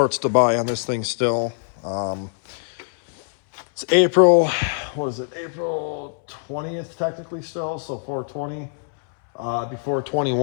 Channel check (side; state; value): right; silent; 63 dB below the other